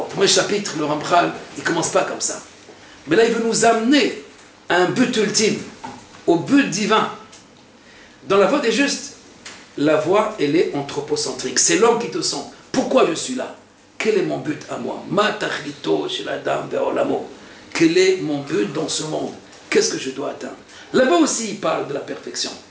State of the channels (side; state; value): both; identical; correlation 1.00